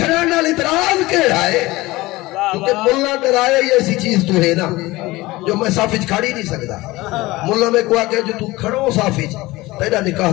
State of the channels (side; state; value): right; quieter; 19.9 dB